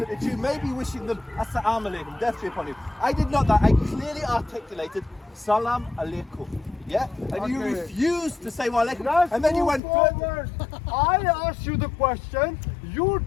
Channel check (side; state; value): right; drops out; at 9.8 s